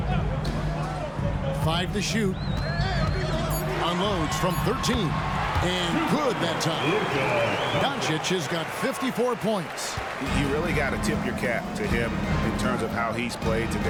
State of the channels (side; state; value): both; identical; correlation 1.00